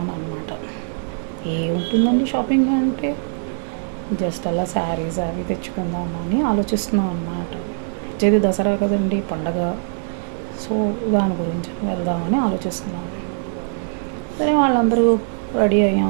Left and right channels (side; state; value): left; silent; 65 dB below the other